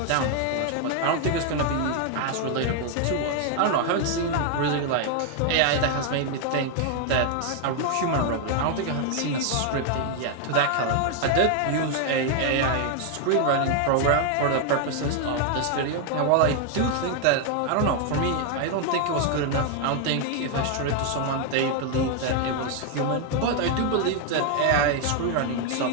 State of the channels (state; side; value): different; both; correlation 0.00